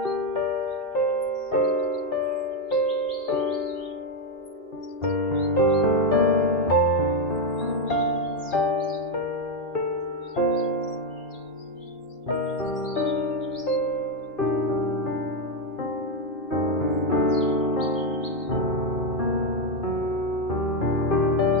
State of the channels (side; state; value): right; late; 2.2 ms